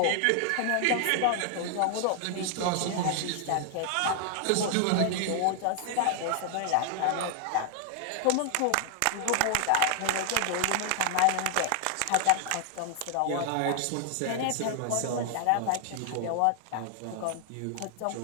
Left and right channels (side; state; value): both; different; correlation 0.00